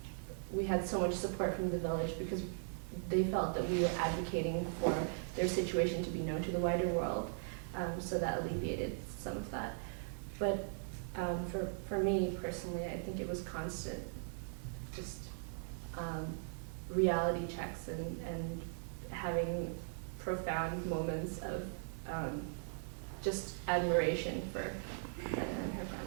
we had so much support from the village, because they felt that we were advocating for their situation to be known to the wider world, so that alleviated some of that. But for me personally, I think it was constant, just reality checks and having profound moments of just admiration for Dada and her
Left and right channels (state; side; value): silent; left; digital silence